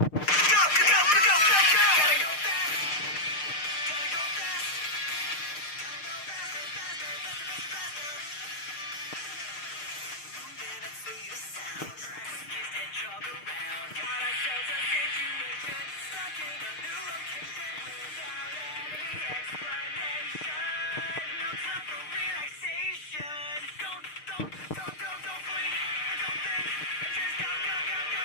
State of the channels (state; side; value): late; right; 6.6 ms